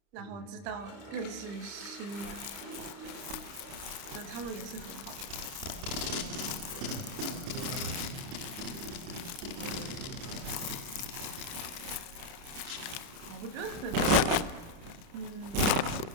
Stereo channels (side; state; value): left; late; 29 ms